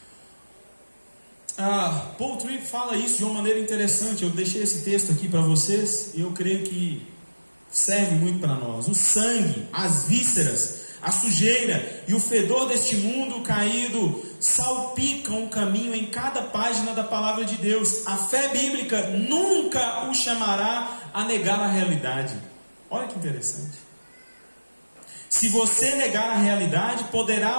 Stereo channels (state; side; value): inverted; both; correlation -1.00